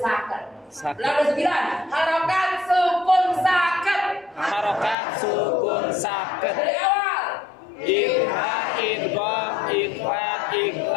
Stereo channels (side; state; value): right; drops out; at 5.0 s